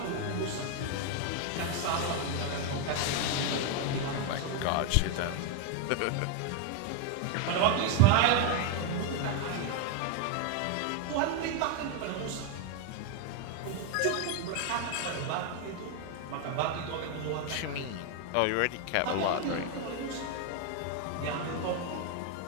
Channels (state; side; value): different; both; correlation 0.01